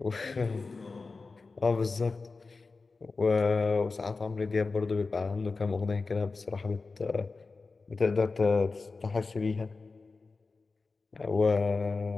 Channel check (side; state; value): right; quieter; 4.0 dB